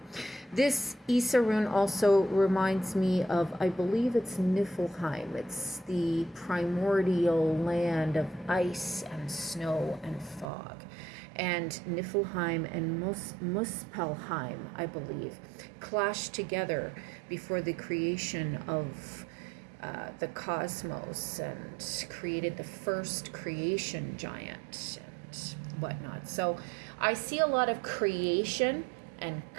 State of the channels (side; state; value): left; drops out; at 10.5 s